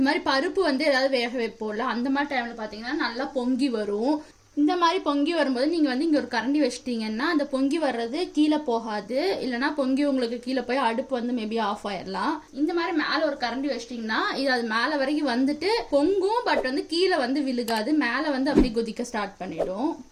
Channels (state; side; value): identical; both; correlation 1.00